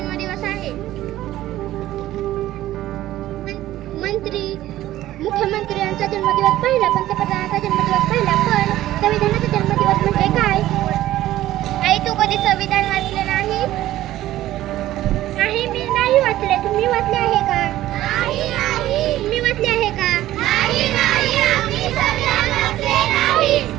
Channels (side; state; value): left; quieter; 14.5 dB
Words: आहे. मंत्री मुख्यमंत्री यांचा जन्मदिवस पहिला, पंतप्रधानाचा जन्मदिवस पहिला, पण संविधानाचा जन्मदिवस म्हणजे काय? आई तू कधी संविधान वाचले नाही? नाही, मी नाही वाचले. तुम्ही वाचले आहे का? तुम्ही वाचले आहे का?